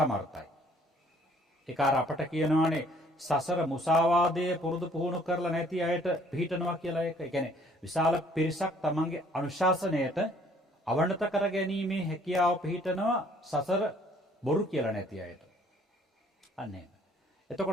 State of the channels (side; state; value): both; normal; correlation 0.59